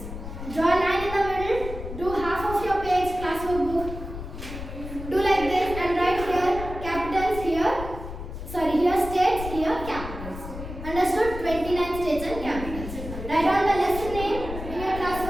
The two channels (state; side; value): noise; left; rumble, 9 dB below the sound